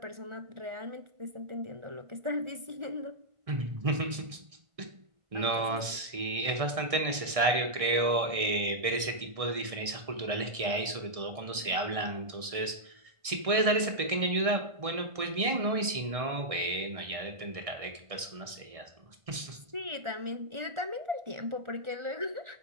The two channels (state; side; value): late; left; 1.6 ms